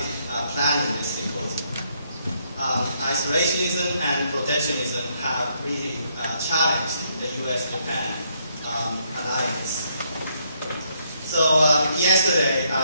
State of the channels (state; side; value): inverted; both; correlation -0.73